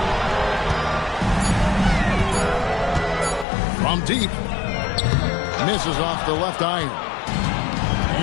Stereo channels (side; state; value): right; drops out; at 3.5 s